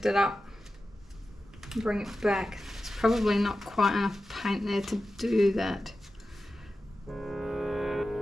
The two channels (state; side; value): normal; both; correlation 0.93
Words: it up, bring it back. It's probably not quite enough paint there to do that.